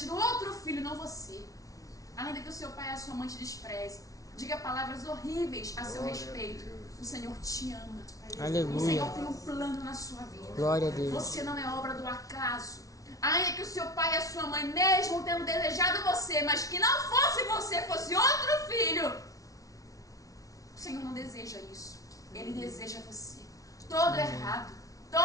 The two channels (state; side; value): late; right; 0.17 ms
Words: tido outro filho, não você. Ainda que o seu pai e a sua mãe te despreze, diga palavras horríveis a seu respeito. O Senhor te ama. Aleluia. O Senhor tem um plano na sua vida. Glória a Deus. Você não é obra do acaso. Ainda que o seu pai e a sua mãe, mesmo tendo desejado você, mas que não fosse você, fosse outro filho, o Senhor não deseja isso. Ele deseja você. Todo errado,